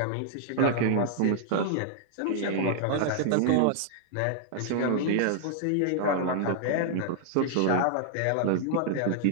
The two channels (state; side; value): different; both; correlation -0.01